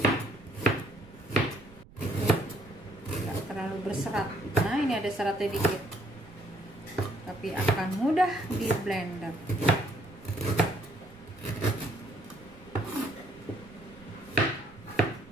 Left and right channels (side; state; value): right; noise; rumble, 23 dB below the sound